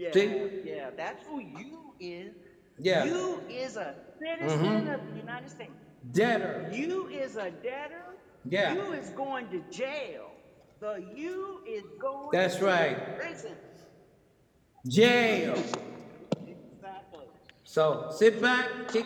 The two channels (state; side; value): identical; both; correlation 1.00